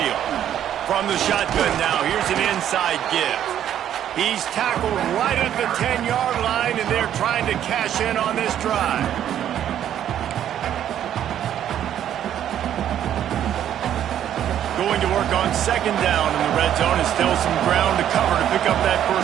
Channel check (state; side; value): quieter; left; 10.5 dB